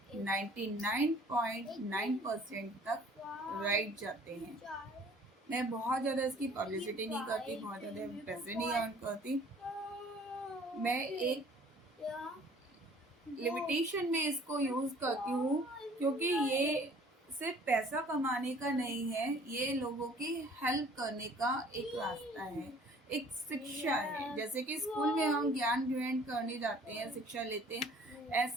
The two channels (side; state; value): both; normal; correlation 0.53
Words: 99.9% तक राइट जाते हैं। मैं बहुत ज़्यादा इसकी पब्लिसिटी नहीं करती, बहुत ज़्यादा पैसे नहीं अर्न करती। मैं एक लिमिटेशन में इसको यूज़ करती हूँ, क्योंकि ये सिर्फ पैसा कमाने का नहीं है, ये लोगों की हेल्प करने का एक रास्ता है, एक शिक्षा है। जैसे कि स्कूल में हम ज्ञान ग्रहण करने जाते हैं, शिक्षा लेते हैं,